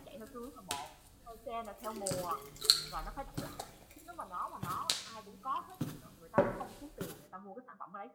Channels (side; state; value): both; identical; correlation 1.00